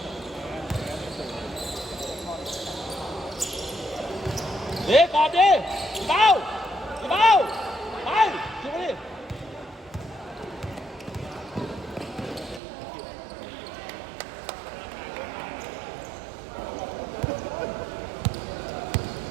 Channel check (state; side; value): drops out; left; at 12.6 s